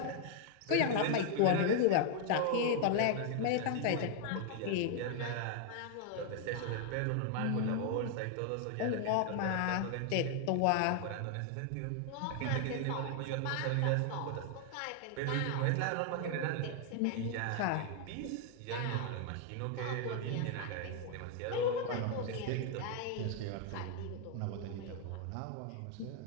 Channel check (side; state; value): both; different; correlation 0.00